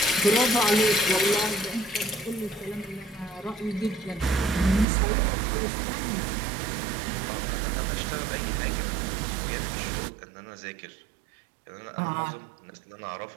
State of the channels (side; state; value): left; drops out; at 4.9 s